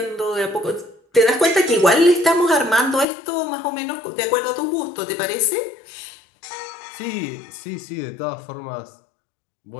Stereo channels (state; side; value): drops out; right; at 3.1 s